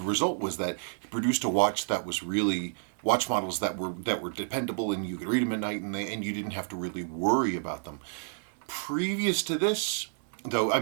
was that he produced a watch that was really watch models that were dependable, and you could read them at night, and you didn't have to really worry about them. Previous to this, though, I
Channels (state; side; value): silent; left; 58 dB below the other